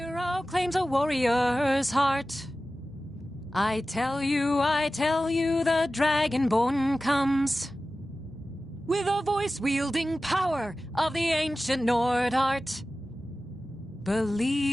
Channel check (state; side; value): normal; both; correlation 0.95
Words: claims a warrior's heart. I tell you, the Dragonborn comes. With a voice-wielding power of the ancient Nord art.